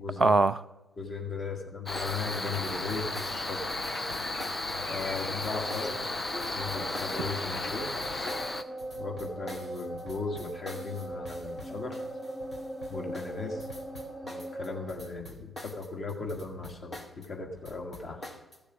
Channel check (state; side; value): normal; both; correlation 0.75